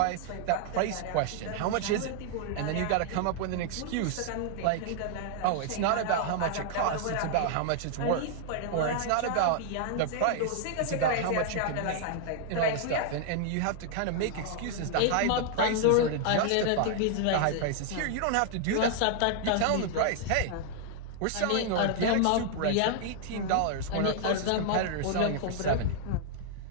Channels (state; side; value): different; both; correlation 0.00